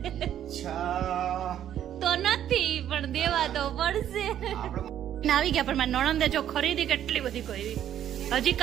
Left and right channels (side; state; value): left; quieter; 10.7 dB